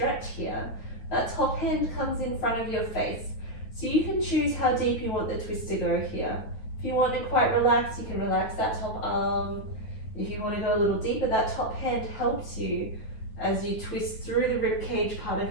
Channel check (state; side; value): late; right; 9.2 ms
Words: here. That top hand comes in front of your face. So you can choose how deep you want the twist to go here. If you want it quite relaxed, you can relax that top arm. If you want to go a little deeper, that top hand helps you as you twist through the ribcage part